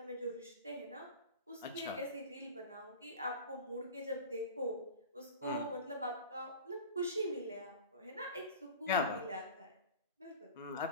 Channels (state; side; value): inverted; both; correlation -0.35